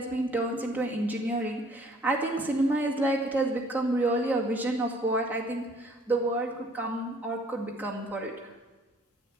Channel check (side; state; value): both; normal; correlation 0.58